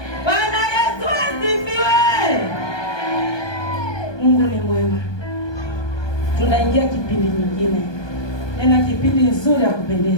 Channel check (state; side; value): late; right; 1.2 ms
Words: Bwana Yesu asifiwe. Mungu ni mwema. Tunaingia kipindi nyingine. Tena kipindi nzuri ya